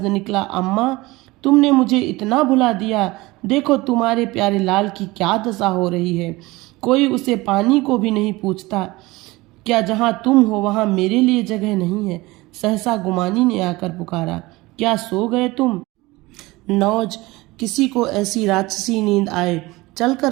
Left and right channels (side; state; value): left; quieter; 21.1 dB